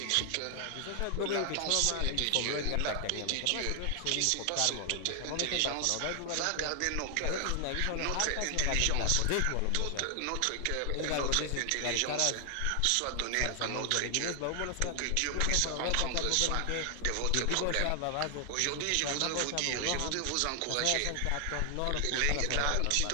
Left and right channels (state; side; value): different; both; correlation 0.00